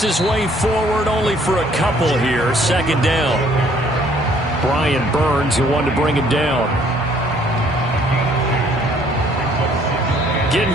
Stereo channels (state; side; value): normal; both; correlation 0.61